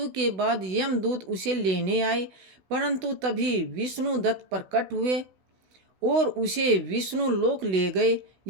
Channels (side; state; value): left; late; 16 ms